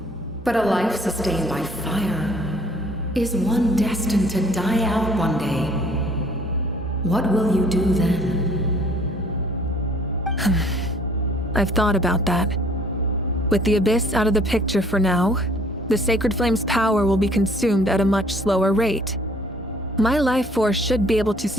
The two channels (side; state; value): both; normal; correlation 0.57